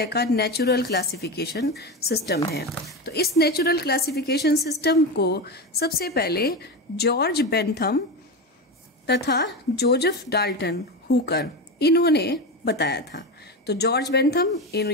का नेचुरल क्लासिफिकेशन सिस्टम है। तो इस नेचुरल क्लासिफिकेशन सिस्टम को सबसे पहले जॉर्ज बेंथम तथा जोसेफ डाल्टन हुकर इन्होंने बताया था। तो जॉर्ज बेंथम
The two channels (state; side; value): normal; both; correlation 0.19